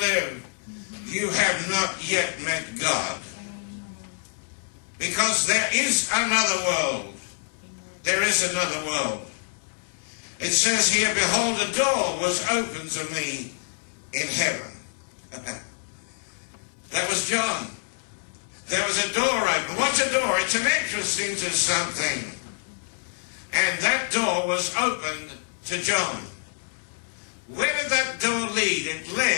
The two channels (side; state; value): right; silent; 60 dB below the other